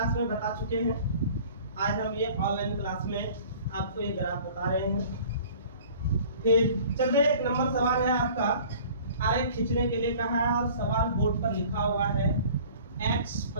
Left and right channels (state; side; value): inverted; both; correlation -0.48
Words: में बता चुके हैं। आज हम ये ऑनलाइन क्लास में आपको ये ग्राफ बता रहे हैं। फिर चलिए, एक नंबर सवाल है आपका, आरेख खींचने के लिए कहा है और सवाल बोर्ड पर लिखा हुआ है x